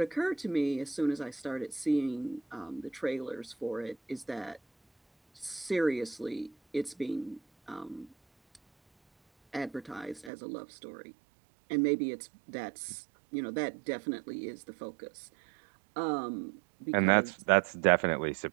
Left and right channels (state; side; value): drops out; left; at 10.3 s